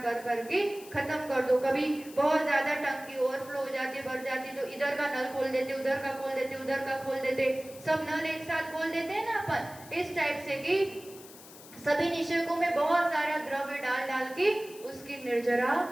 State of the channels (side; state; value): left; noise; hiss, 18 dB below the sound